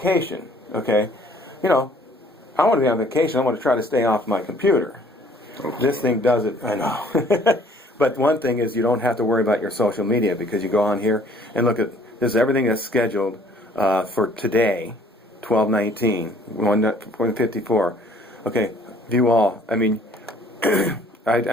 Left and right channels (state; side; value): normal; both; correlation 0.57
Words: Okay, you know, I want to be on vacation. I want to try to stay off my computer. Okay. This thing does it. I know. But one thing is you don't have to worry about your social media because you go on here and look at this is everything that's scheduled for today, 12/19, 1:54. Okay, view all. I mean, I